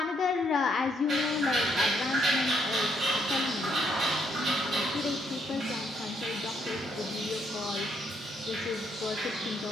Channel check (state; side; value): normal; both; correlation 0.73